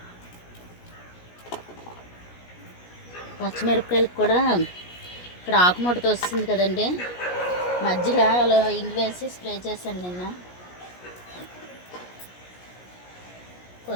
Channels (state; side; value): late; right; 17 ms